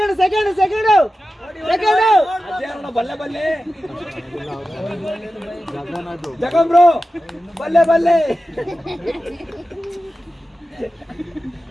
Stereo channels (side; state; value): both; normal; correlation 0.93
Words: ಸೆಕೆಂಡ್ ಸೆಕೆಂಡ್ ಸೆಕೆಂಡ್ ಅಜ್ಜಾರಣ್ಣ ಬಲ್ಲೆ ಬಲ್ಲೆ ಜಗನ್ ಬ್ರೋ ಬಲ್ಲೆ ಬಲ್ಲೆ